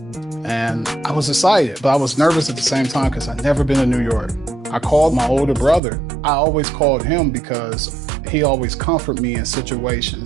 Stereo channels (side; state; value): left; drops out; at 5.8 s